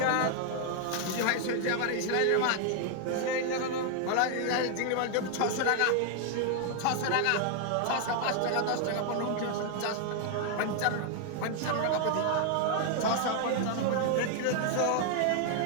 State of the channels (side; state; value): both; different; correlation 0.00